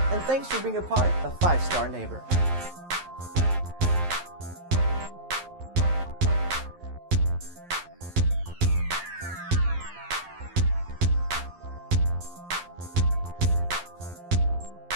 and thanks for being a part of 5 Star Neighbor.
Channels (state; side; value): late; left; 11 ms